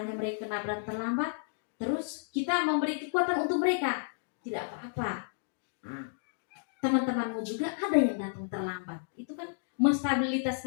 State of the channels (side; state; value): right; silent; digital silence